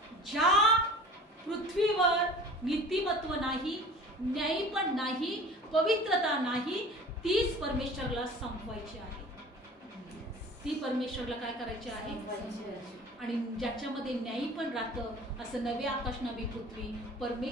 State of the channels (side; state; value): both; normal; correlation 0.42